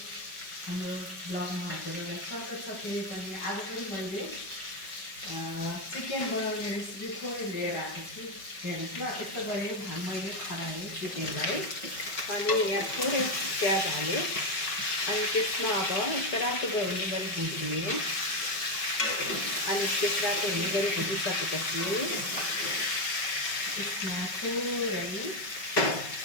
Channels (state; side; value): late; right; 5.3 ms